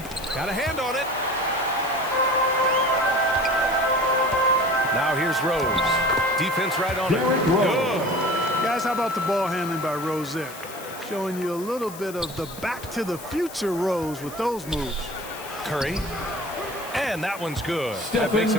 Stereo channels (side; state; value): left; noise; hiss, 16 dB below the sound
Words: Got a hand on it. Now here's Rose. Defense right on it. Good. Guys, how about the ball handling by Rose there? Showing you a little bit of the back to the future Rose with those moves. Curry. And that one's good. That Stephen makes